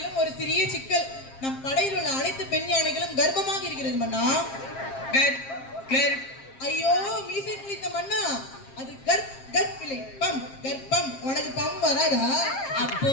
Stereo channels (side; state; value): right; late; 7.5 ms